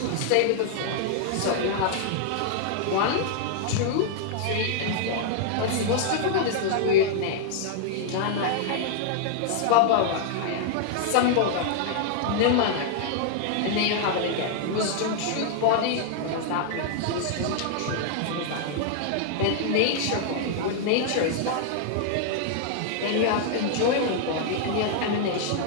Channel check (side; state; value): both; different; correlation -0.01